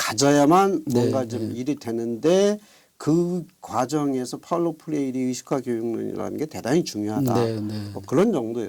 뭔가 좀 일이 되는데 그 과정에서 파울로 프레이리 의식화 교육론이라는 게 대단히 중요하다. 뭐 그런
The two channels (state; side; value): identical; both; correlation 1.00